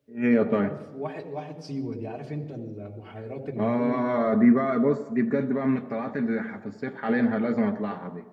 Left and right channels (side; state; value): both; identical; correlation 1.00